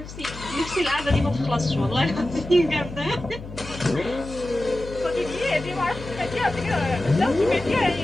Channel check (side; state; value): left; noise; hum, 13 dB below the sound